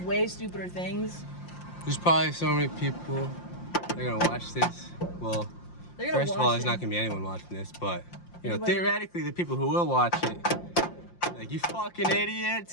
way stupider things. There's probably so many people that are gonna watch this. Well, They're gonna first of watch all, there's it. not gonna be anyone watching this, but you know, Anybody- theoretically, the people who will watch it, like you fucking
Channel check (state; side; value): late; right; 5.7 ms